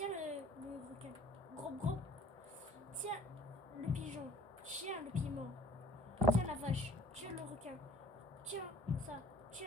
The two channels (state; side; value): normal; both; correlation 0.54